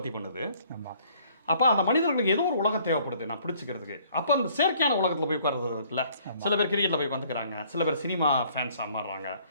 பண்ணுது. அப்போ அந்த மனிதர்களுக்கு ஏதோ ஒரு உலகம் தேவைப்படுது நான் பிடிச்சிக்கிறதுக்கு. அப்போ அந்த செயற்கையான உலகத்தில் போய் உட்கார்றது இருக்குல்ல, சில பேர் கிரிக்கெட்டில் போய் வந்துக்கிறாங்க, சில பேர் சினிமா ஃபேன்ஸாக மாறுறாங்க,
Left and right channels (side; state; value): both; inverted; correlation -0.60